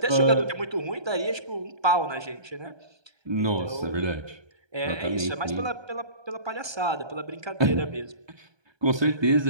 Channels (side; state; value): left; late; 1.2 ms